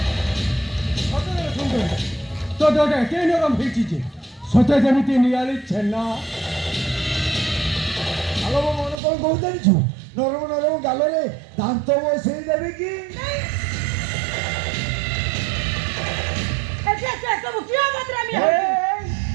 ତ ଦେହଟା ଏତେ ନରମ ହେଇଛି ଯେ ସତେ ଯେମିତି ନିଆଳି ଛେନା। ଆଲୋ ମୋ ମନ କ'ଣ କହୁ ଜାଣିଛୁ ନରମ ନରମ ଗାଲରେ ଦାନ୍ତ ବସେଇ ଦେବି କି।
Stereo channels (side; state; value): left; drops out; at 9.0 s